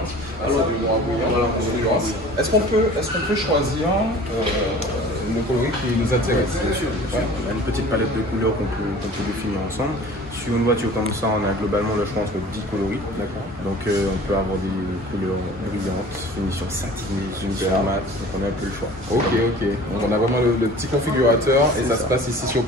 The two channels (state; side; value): normal; both; correlation 0.45